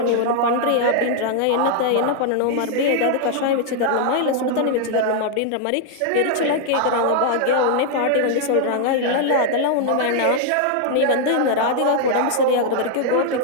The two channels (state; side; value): different; both; correlation 0.00